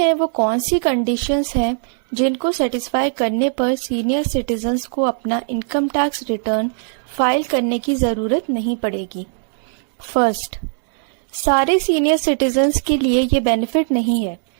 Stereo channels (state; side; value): silent; left; 66 dB below the other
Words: वो कौन सी कंडीशंस हैं जिनको सेटिस्फाई करने पर सीनियर सिटीजन्स को अपना इनकम टैक्स रिटर्न फाइल करने की ज़रूरत नहीं पड़ेगी। फर्स्ट, सारे सीनियर सिटीजन्स के लिए ये बेनिफिट नहीं है।